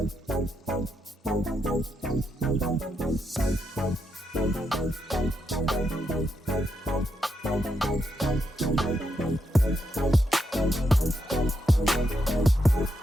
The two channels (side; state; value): both; normal; correlation 0.81